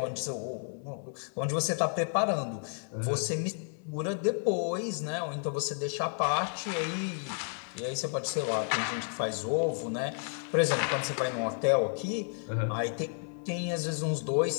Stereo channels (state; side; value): silent; right; 55 dB below the other